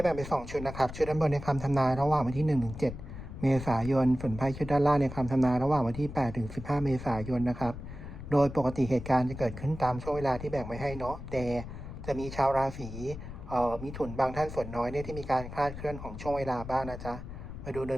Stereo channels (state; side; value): noise; left; rumble, 10 dB below the sound